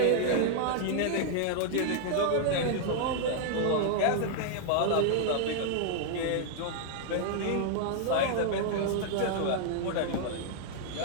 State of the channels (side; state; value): both; different; correlation -0.01